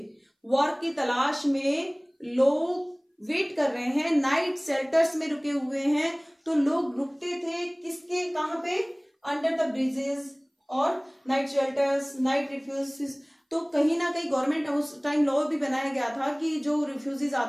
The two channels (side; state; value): both; identical; correlation 1.00